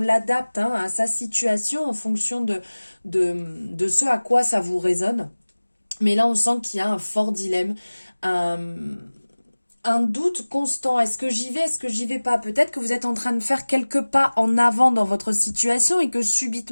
à sa situation en fonction de ce à quoi ça vous résonne. Mais là, on sent qu'il y a un fort dilemme, un doute constant. Est-ce que j'y vais, est-ce que j'y vais pas? Peut-être que vous êtes en train de faire quelques pas en avant dans votre situation et que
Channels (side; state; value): both; inverted; correlation -1.00